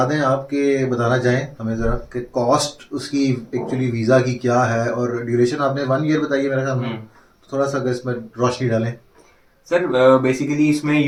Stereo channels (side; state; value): both; identical; correlation 1.00